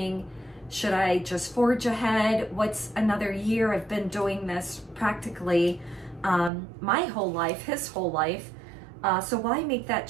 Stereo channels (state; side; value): drops out; left; at 6.5 s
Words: should I just forge ahead? What's another year? I've been doing this practically my whole life, his whole life. So why make that